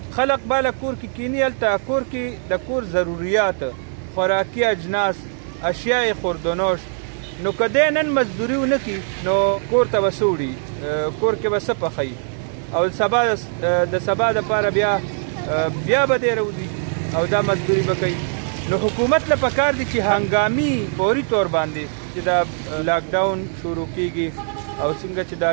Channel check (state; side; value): silent; left; 65 dB below the other